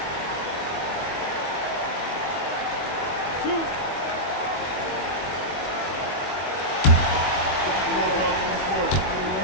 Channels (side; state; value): right; late; 22 ms